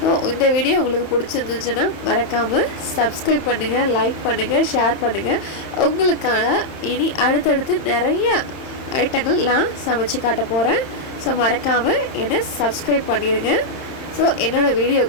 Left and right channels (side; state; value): right; late; 31 ms